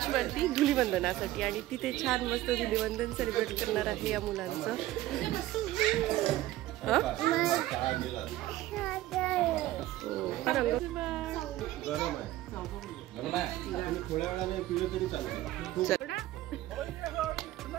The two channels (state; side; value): quieter; left; 15.5 dB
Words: धुलीवंदनासाठी. आणि तिथे छान मस्त धुलीवंदन सेलिब्रेट करणार आहे या मुलांचं. गरम आहे थोड्या वेळाने पिलं तरी चालतं.